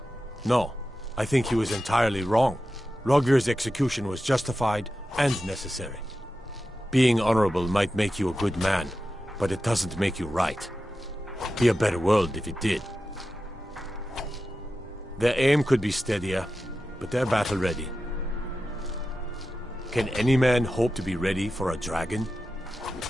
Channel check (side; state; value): both; normal; correlation 0.92